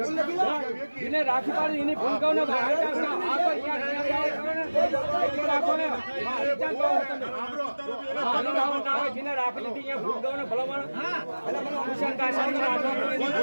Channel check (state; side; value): inverted; both; correlation -1.00